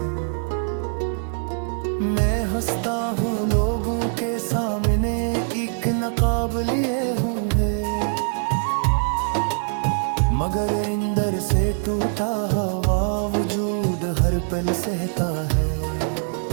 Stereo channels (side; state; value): left; silent; digital silence